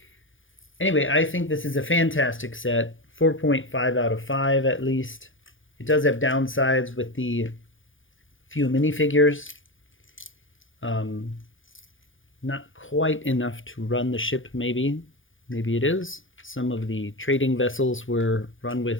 Anyway, I think this is a fantastic set, 4.5 out of 5 at least. It does have downsides with the few minifigures. Not quite enough to run the ship, maybe. Maybe it is. Some of the trading vessels were run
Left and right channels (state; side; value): late; right; 0.58 ms